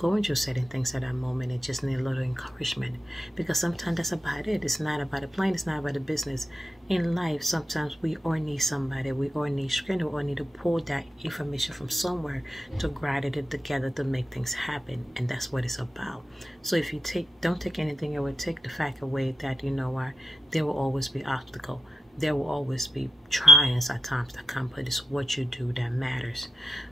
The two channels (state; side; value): normal; both; correlation 0.90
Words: through certain things at that moment and just need a little encouragement. Because sometimes that's about it. It's not about the plane, it's not about the business. In life, sometimes we all need somebody, we all need strength, we all need to pull that information from somewhere to grind it together to make things happen. And that's what it's about. So if you don't take anything away, take the fact away that, you know what, there will always be obstacles. There will always be trials at times that come, but it's what you do that matters.